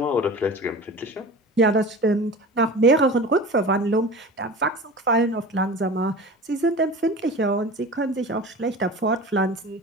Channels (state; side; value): normal; both; correlation 0.35